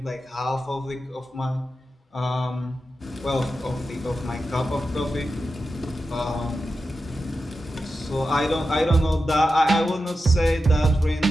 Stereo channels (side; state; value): both; normal; correlation 0.91